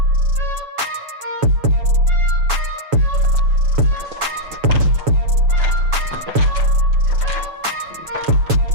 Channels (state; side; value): late; left; 7.0 ms